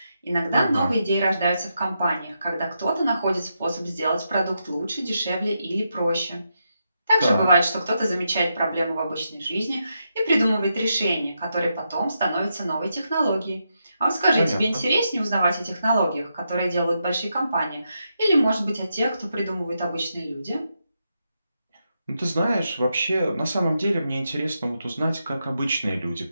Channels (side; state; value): both; inverted; correlation -0.84